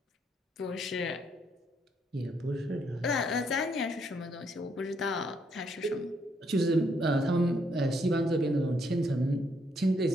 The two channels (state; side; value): normal; both; correlation 0.73